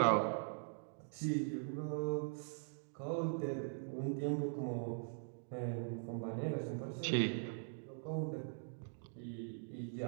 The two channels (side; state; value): left; silent; digital silence